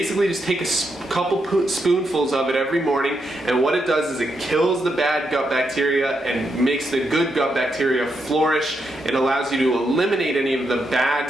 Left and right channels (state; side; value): normal; both; correlation 0.82